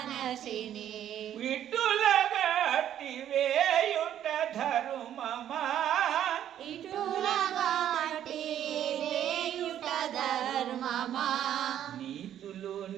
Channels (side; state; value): left; quieter; 10.7 dB